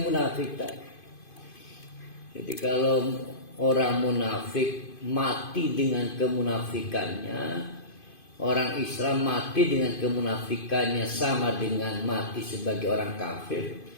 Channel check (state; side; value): late; right; 2.5 ms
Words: munafik tadi. Jadi kalau orang munafik mati dengan kemunafikannya, orang Islam mati dengan kemunafikannya, sama dengan mati sebagai orang kafir.